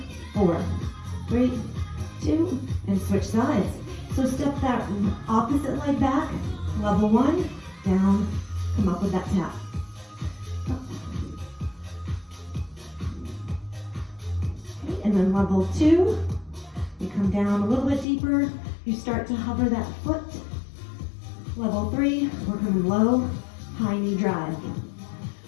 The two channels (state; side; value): drops out; right; at 18.1 s